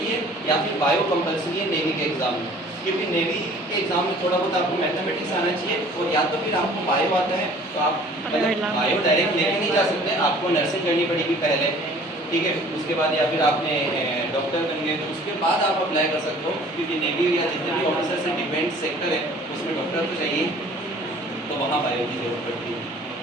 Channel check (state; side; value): normal; both; correlation 0.51